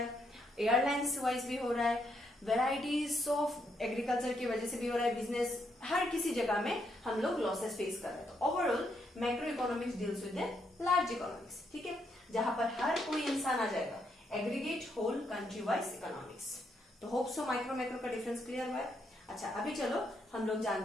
है, एयरलाइंस वाइज भी हो रहा है, वेराइटीज ऑफ एग्रीकल्चर की वजह से भी हो रहा है, बिजनेस, हर किसी जगह में हम लोग लॉसेस फेस कर रहे हैं। तो overall macro economics deals with the large economics, ठीक है, जहां पर हर कोई इंसान आ जाएगा। Aggregate whole country wise economics. तो होप सो माइक्रो मैक्रो का डिफरेंस क्लियर हुआ है। अच्छा, अभी चलो हम लोग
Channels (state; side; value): normal; both; correlation 0.77